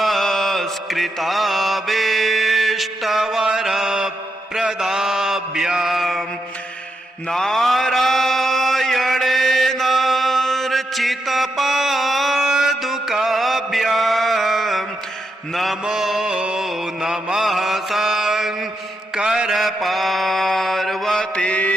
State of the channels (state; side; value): normal; both; correlation 0.83